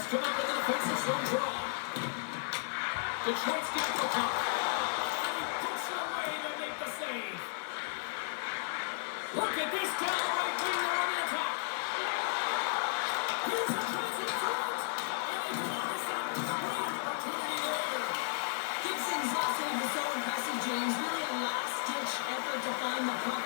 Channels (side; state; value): right; silent; digital silence